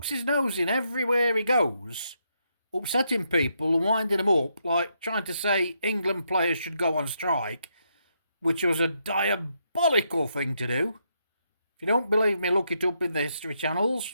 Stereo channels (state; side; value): inverted; both; correlation -0.78